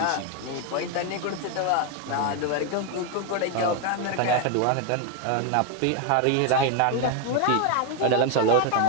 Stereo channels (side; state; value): both; different; correlation 0.01